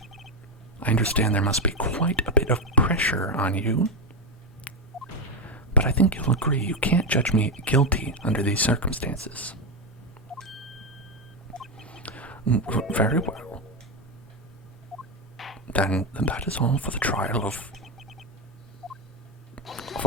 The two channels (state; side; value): normal; both; correlation 0.09